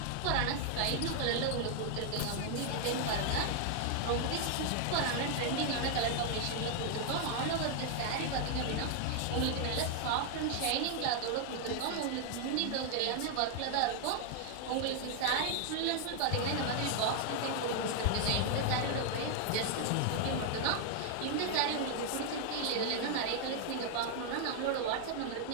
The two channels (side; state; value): both; different; correlation 0.00